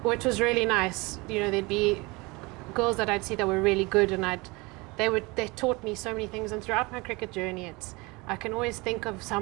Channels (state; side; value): quieter; left; 25.1 dB